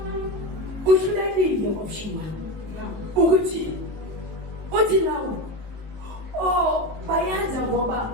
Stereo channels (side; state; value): left; late; 19 ms